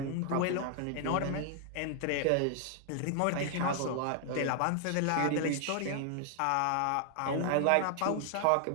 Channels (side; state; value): both; different; correlation 0.00